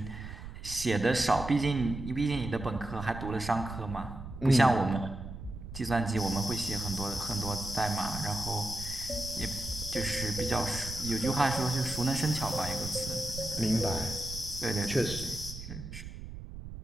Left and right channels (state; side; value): noise; right; rumble, 11 dB below the sound